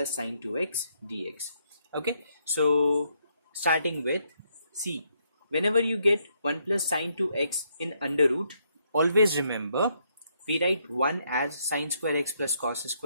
sin 2x dx. Okay, so starting with, see, whenever you get 1 plus sin 2x in under root, always remember we write 1 as sin square x plus cos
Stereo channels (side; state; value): both; inverted; correlation -0.74